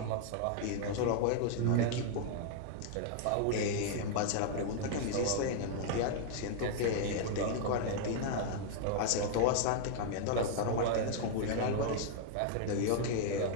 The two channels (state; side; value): different; both; correlation -0.01